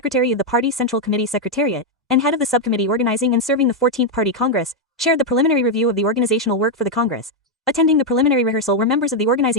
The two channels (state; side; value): normal; both; correlation 0.01